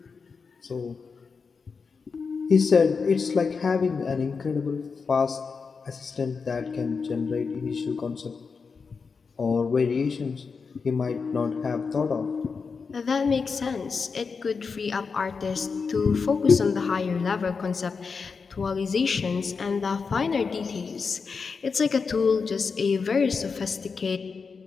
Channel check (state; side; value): quieter; right; 5.1 dB